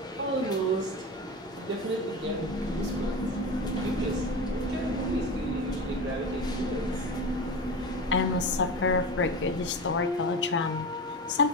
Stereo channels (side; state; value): both; normal; correlation 0.26